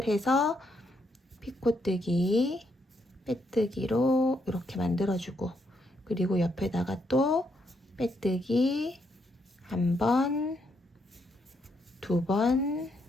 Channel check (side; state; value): both; normal; correlation 0.77